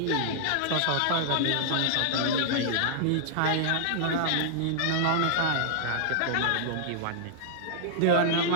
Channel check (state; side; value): different; both; correlation -0.01